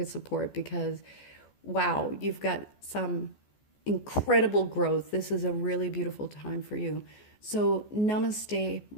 support, because wow, you've got some incredible growth. This is a really beautiful time for you. So namaste,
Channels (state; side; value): late; right; 14 ms